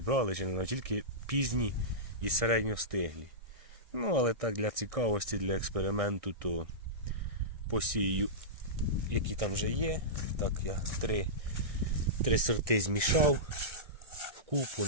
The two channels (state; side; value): late; left; 1.6 ms